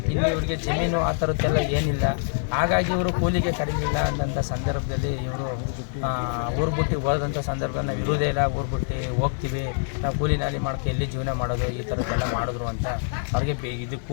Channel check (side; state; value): right; silent; digital silence